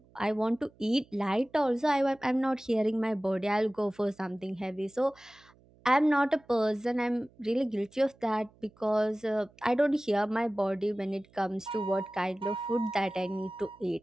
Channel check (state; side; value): noise; right; hum, 29 dB below the sound